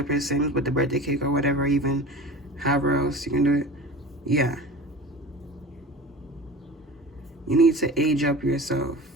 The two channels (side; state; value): both; normal; correlation 0.36